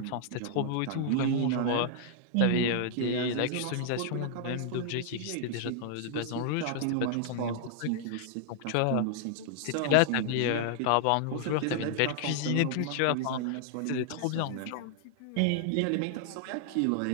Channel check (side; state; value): both; different; correlation -0.01